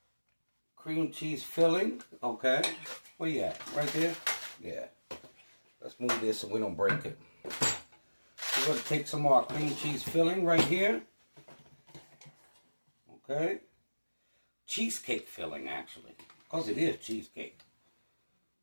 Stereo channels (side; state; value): both; inverted; correlation -1.00